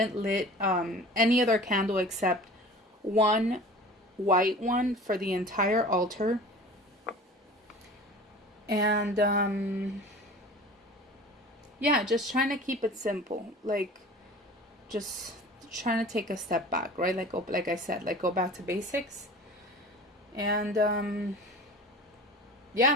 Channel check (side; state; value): both; normal; correlation 0.40